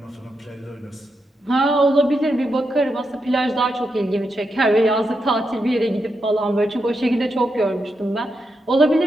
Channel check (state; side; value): normal; both; correlation 0.85